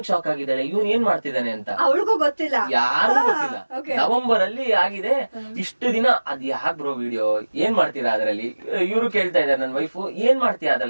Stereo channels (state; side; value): inverted; both; correlation -1.00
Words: ಶಾಕ್ ಆಗಿದ್ದಾಳೆ, ಇವನ್ ಏನ್ ಮಾಡ್ತಿದ್ದಾನೆ ಅಂತ ಅವಳಿಗೂ ಗೊತ್ತಿಲ್ಲ, ಯಾರಿಗೂ ಗೊತ್ತಿಲ್ಲ. ನವೆಂಬರ್ ಅಲ್ಲಿ ಆಗಿದೆ, ಇಷ್ಟು ದಿನ ಅದ್ ಯಾಕ್ ಬ್ರೋ ವಿಡಿಯೋ ಏನ್ ಮಾಡ್ತೀರಾ ಅದ್ರಲ್ಲಿ, ಇವ್ರು ಕೇಳ್ತಾ ಇದಾರೆ ನನ್ ವೈಫು ಏನ್ ಮಾಡ್ತೀಯ